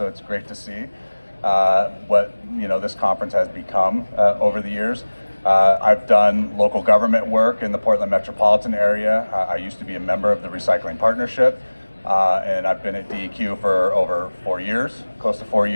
it's great to see what this conference has become over the years. I've done local government work in the Portland metropolitan area. I used to be a member of the Recycling Partnership, and I've been at DEQ for over 4 years, close to 4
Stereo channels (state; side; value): inverted; both; correlation -1.00